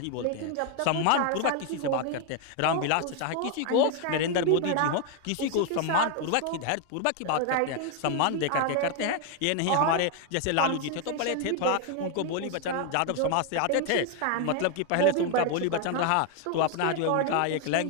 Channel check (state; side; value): different; both; correlation 0.01